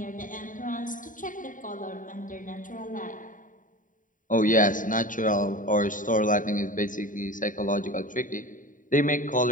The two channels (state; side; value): late; right; 0.38 ms